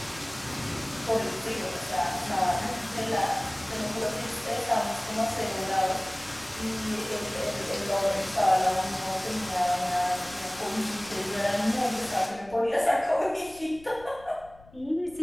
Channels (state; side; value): noise; left; rumble, 22 dB below the sound